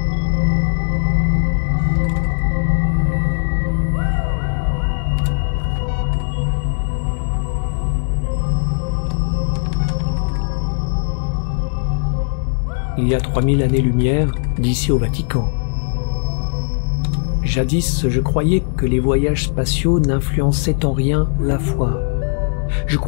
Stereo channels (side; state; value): right; silent; digital silence